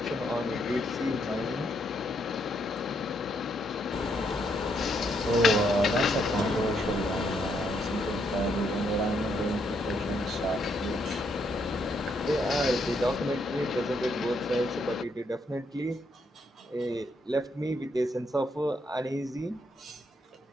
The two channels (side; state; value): both; normal; correlation 0.75